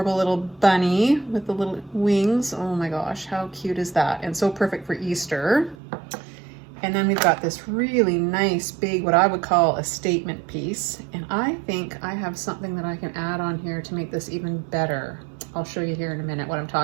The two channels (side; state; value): left; drops out; at 5.8 s